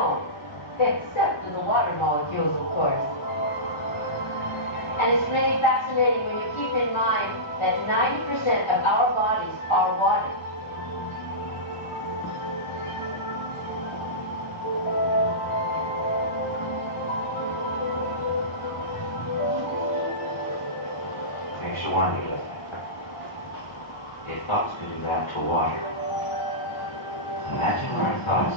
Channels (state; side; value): normal; both; correlation -0.19